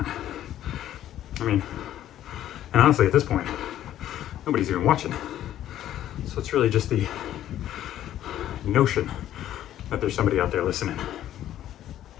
I mean, and honestly, at this point, nobody's even watching. So it's really just the notion that there's somebody out there listening.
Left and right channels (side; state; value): right; quieter; 12.1 dB